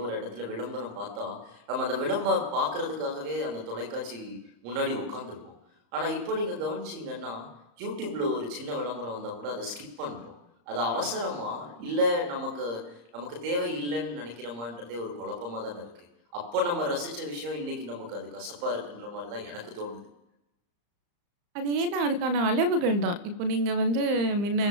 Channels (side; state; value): left; late; 34 ms